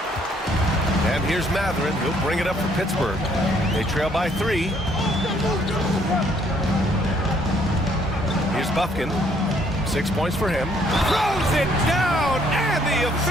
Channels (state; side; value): normal; both; correlation 0.66